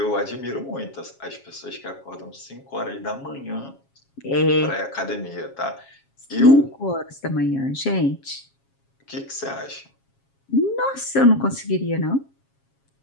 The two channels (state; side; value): late; right; 7.3 ms